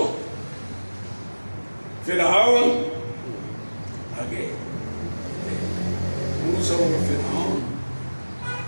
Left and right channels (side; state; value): both; inverted; correlation -1.00